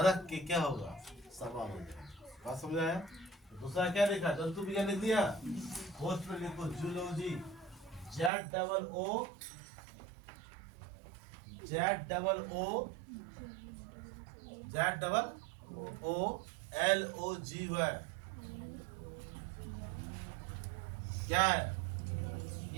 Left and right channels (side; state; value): left; drops out; at 8.3 s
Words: के क्या होगा? सवाल हो जाएगा। बात समझ आया? दूसरा क्या लिखा? जंतु विज्ञान लिख दिया। पोस्ट में लिखो जूलॉजी, ZOOLOGY क्या है?